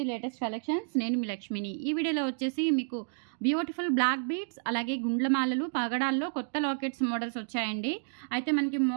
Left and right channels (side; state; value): left; silent; digital silence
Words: లేటెస్ట్ కలెక్షన్స్. నేను మీ లక్ష్మిని. ఈ వీడియోలో వచ్చేసి మీకు బ్యూటిఫుల్ బ్లాక్ బీడ్స్, అలాగే గుండ్లమాలలు, పగడాల్లో కొత్త లాకెట్స్ మోడల్స్ వచ్చాయండి. అయితే మనకి